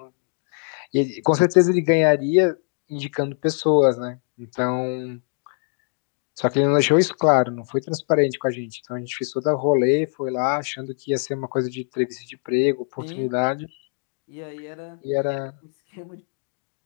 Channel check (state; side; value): silent; right; digital silence